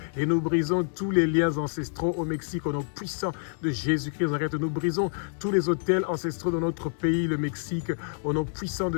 et nous brisons tous les liens ancestraux au Mexique au nom puissant de Jésus-Christ. Nous brisons tous les autels ancestraux de notre pays, le Mexique, au nom puissant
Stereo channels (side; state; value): right; silent; digital silence